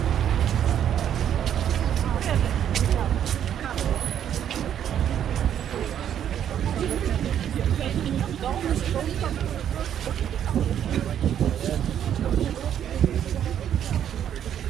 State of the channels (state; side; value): quieter; left; 9.8 dB